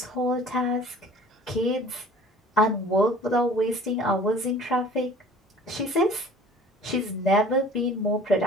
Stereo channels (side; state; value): both; normal; correlation 0.47